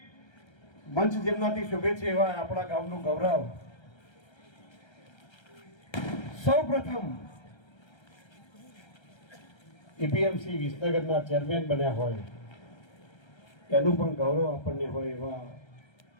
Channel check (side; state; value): right; late; 1.3 ms